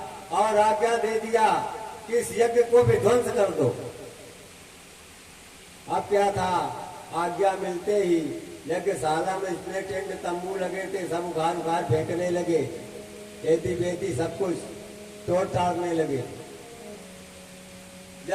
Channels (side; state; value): both; identical; correlation 1.00